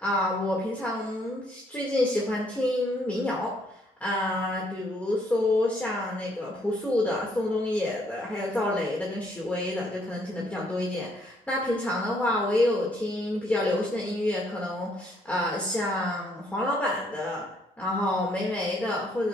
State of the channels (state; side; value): normal; both; correlation 0.68